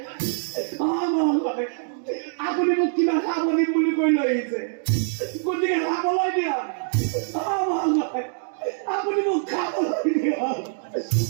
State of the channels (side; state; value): left; silent; digital silence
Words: আপুনি মোক কিবা খাব দিম বুলি কৈ লৈ আহিছে গতিকে খাবলৈ দিয়ক আপুনি মোক খাবলৈ দিয়ক